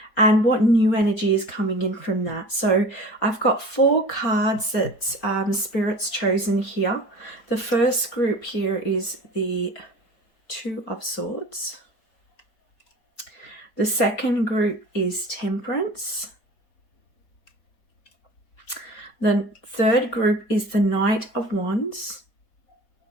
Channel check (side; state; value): right; late; 4.5 ms